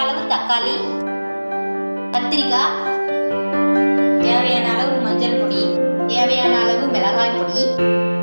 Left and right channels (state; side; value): inverted; both; correlation -1.00